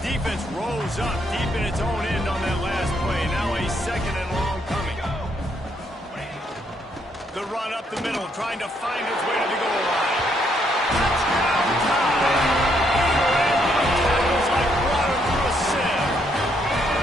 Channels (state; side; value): normal; both; correlation 0.73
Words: Defense rolls up deep in its own end on that last play. Now a second and long. run up the middle, trying to find his way to the goal line. Touchdown time! Tackles like water through a sieve.